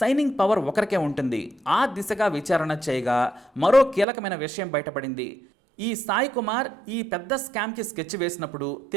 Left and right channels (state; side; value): drops out; left; at 4.0 s